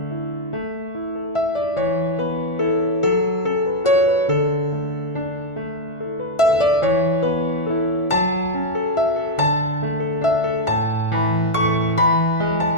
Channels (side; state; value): right; late; 1.4 ms